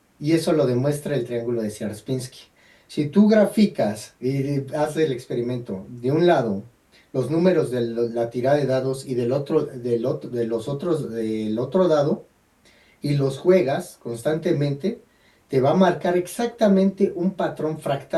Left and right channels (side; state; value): both; identical; correlation 1.00